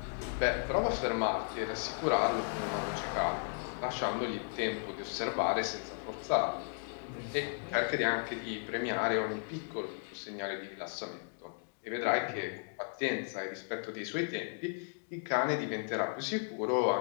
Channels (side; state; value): right; silent; 54 dB below the other